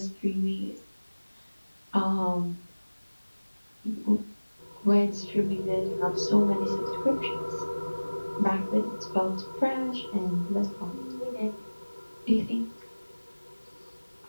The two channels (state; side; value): inverted; both; correlation -1.00